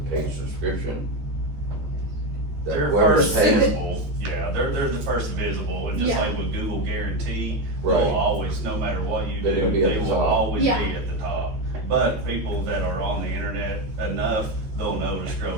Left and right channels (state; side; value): late; left; 14 ms